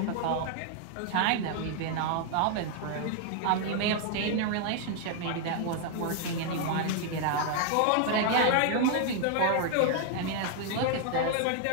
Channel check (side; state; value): both; different; correlation 0.00